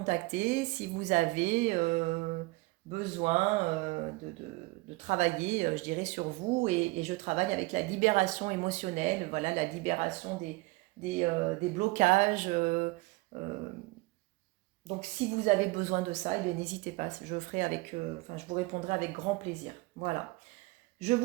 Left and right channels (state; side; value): quieter; left; 23.7 dB